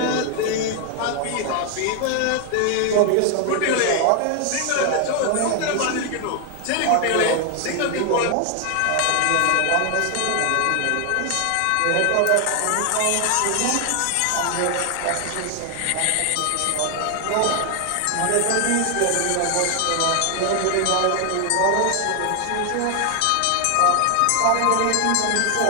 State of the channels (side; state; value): both; different; correlation 0.00